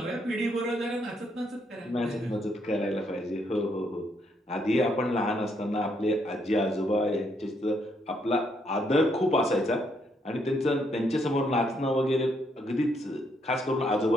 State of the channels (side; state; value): both; normal; correlation 0.74